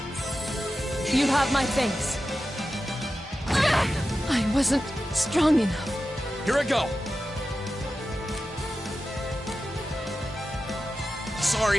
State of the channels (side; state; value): both; normal; correlation 0.92